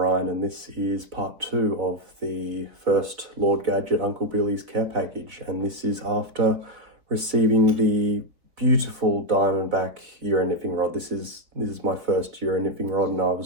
and this is part 2 of the first Lord Gadget Uncle Billy's care package. And this is after receiving the beautiful Diamondback Euro nymphing rod. This is my first Euro nymphing rod, and I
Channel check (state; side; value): late; left; 3.9 ms